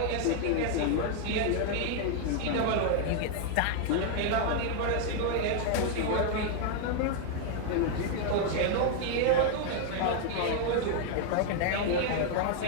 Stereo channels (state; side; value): different; both; correlation 0.00